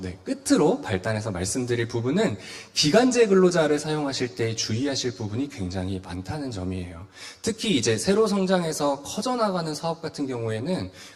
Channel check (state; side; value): identical; both; correlation 1.00